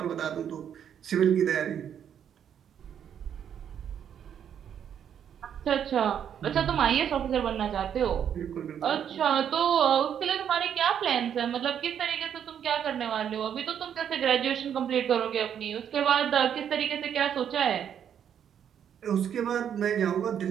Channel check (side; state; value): left; quieter; 8.9 dB